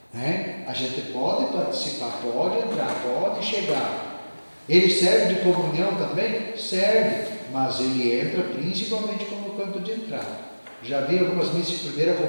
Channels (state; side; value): inverted; both; correlation -1.00